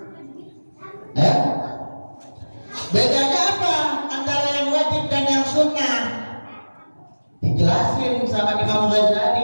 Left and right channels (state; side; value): inverted; both; correlation -1.00